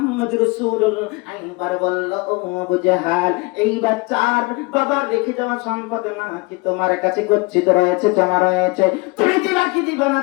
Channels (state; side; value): quieter; right; 26.2 dB